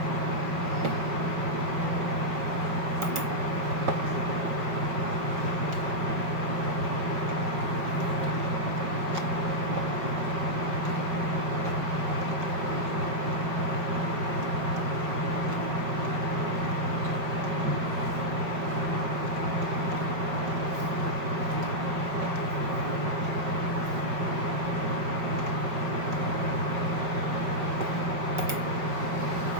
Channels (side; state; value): left; late; 5.3 ms